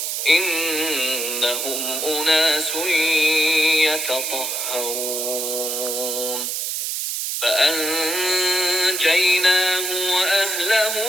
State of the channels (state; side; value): noise; right; hiss, 2 dB below the sound